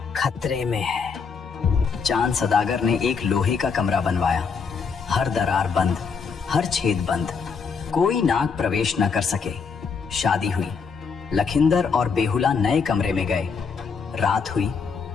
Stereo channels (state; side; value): quieter; right; 5.6 dB